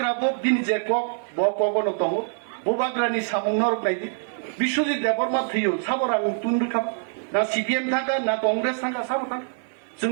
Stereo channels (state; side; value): silent; left; digital silence